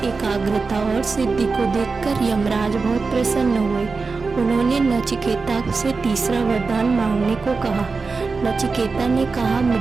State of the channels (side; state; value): left; quieter; 4.3 dB